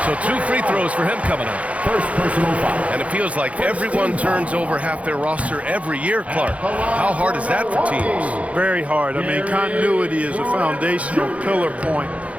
So 2 free throws for him coming up. First personal foul. And it feels like everyone turns over half their roster every year, Clark. How hard is that for teams? Very hard. I mean, continuity is a foundational pillar point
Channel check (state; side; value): late; left; 0.065 ms